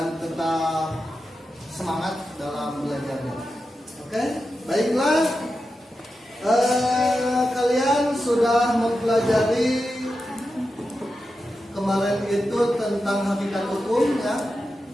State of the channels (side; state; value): both; normal; correlation 0.90